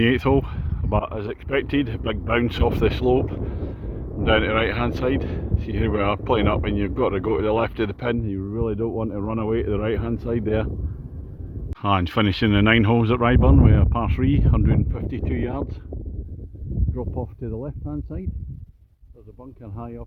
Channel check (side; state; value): both; identical; correlation 1.00